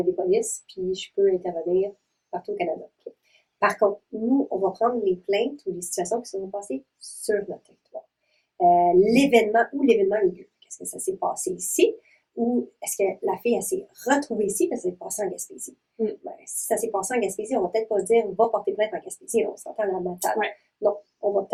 des polices, puis je peux intervenir partout au Canada. Par contre, nous, on va prendre les plaintes ou les situations qui se sont passées sur notre territoire. L'événement a eu lieu. Est-ce que ça s'est passé ici? Ou est-ce que la fille, elle s'est retrouvée ici parce que ça s'est passé en Gaspésie? Ben, si ça s'est passé en Gaspésie, on va peut-être pas dire va porter plainte en Gaspésie, on s'entend à la matade. Ouais. Non, on va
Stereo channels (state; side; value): identical; both; correlation 1.00